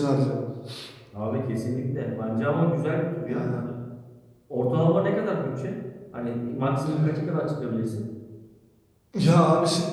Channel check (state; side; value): identical; both; correlation 1.00